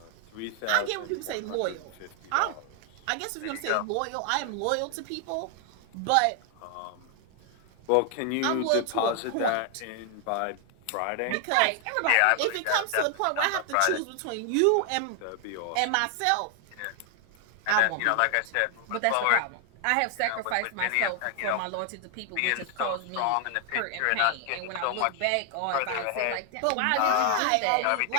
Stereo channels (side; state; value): both; different; correlation 0.00